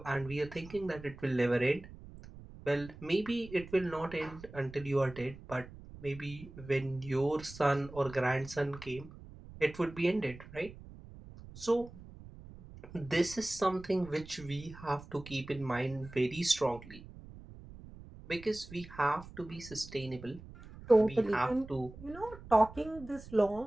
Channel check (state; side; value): noise; right; rumble, 17 dB below the sound